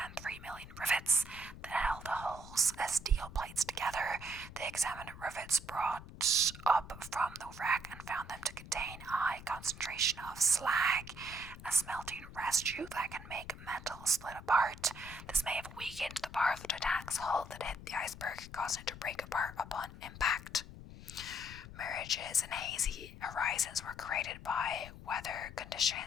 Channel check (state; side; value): noise; left; rumble, 14 dB below the sound